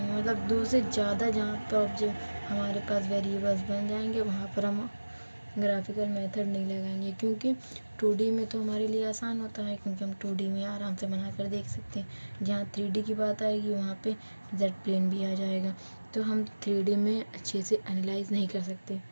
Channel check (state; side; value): inverted; both; correlation -1.00